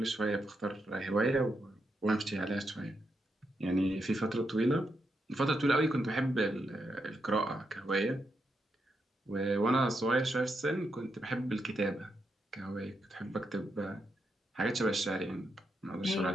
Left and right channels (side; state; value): both; normal; correlation 0.83